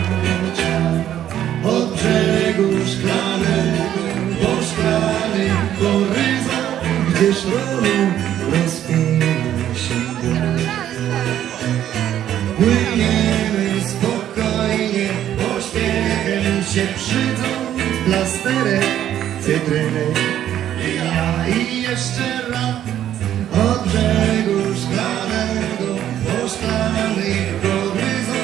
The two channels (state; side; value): quieter; left; 11.2 dB